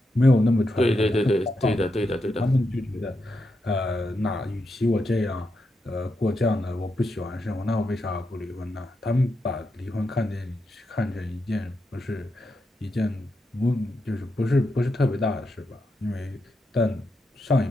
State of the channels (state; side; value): normal; both; correlation 0.84